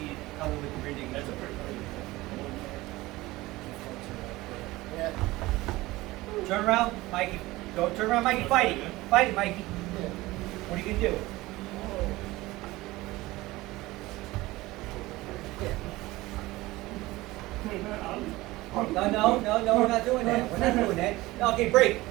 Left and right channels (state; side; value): quieter; left; 19.2 dB